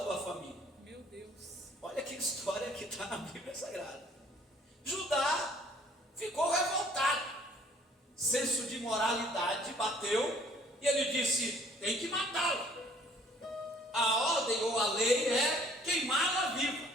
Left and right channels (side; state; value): both; normal; correlation 0.57